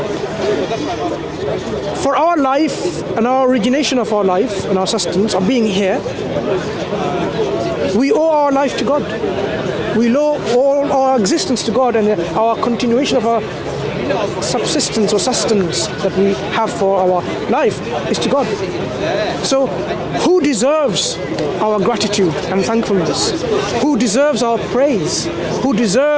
For our life and our origination of our life and our sustenance of being here, we owe our life to God. We owe all our existence to God and our continuation of our subsistence or sustenance that we have for our life is to God. So who deserves our gratitude and thankfulness? Who deserves our praise? Who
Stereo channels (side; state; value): both; identical; correlation 1.00